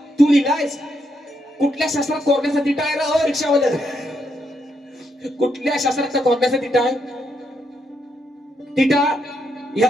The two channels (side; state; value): both; normal; correlation 0.79